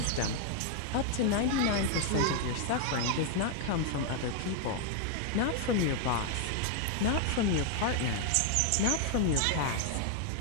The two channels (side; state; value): both; different; correlation 0.00